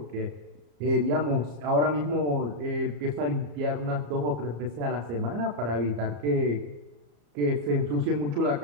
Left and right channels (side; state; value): left; late; 34 ms